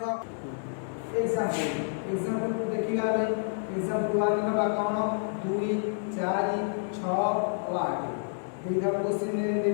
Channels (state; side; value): silent; right; digital silence